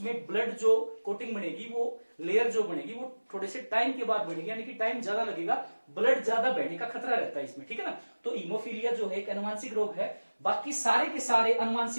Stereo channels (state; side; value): inverted; both; correlation -1.00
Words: ब्लड जो कोटिंग बनेगी, वो लेयर जो बनेगी वो थोड़े से टाइम के बाद बनेगी, यानी कि टाइम ज्यादा लगेगा, ब्लड ज्यादा बहने का खतरा रहता है इसमें। ठीक है ना, तो हीमोफीलिया जो है एक अनुवांशिक रोग है। बाकी सारे के सारे